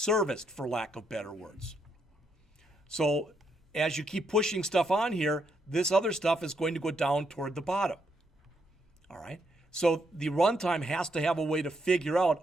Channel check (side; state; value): both; normal; correlation 0.77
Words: for lack of better words. So as you keep pushing stuff on here, this other stuff is going to go down toward the bottom. All right? So the runtime has to have a way to figure out,